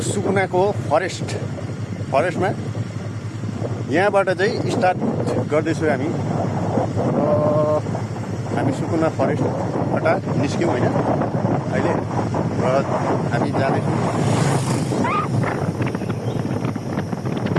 फरेस्टमा। यहाँबाट चाहिँ स्टार्ट गर्दैछु हामी। हामी सुकुना फरेस्टबाट निस्क्यौँ होइन अहिले, र हामी जाँदैछौँ।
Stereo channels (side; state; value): both; identical; correlation 1.00